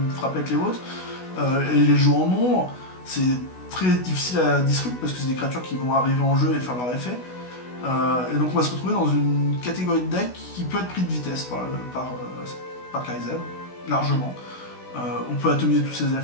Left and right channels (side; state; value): right; late; 16 ms